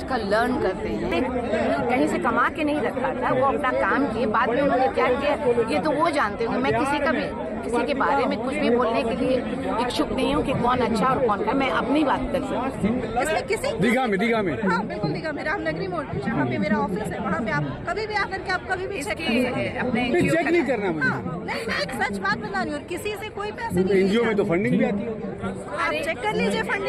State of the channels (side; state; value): both; identical; correlation 1.00